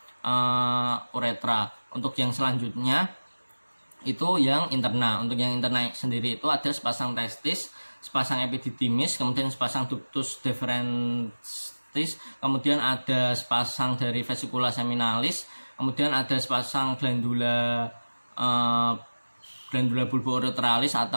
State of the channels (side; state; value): both; inverted; correlation -1.00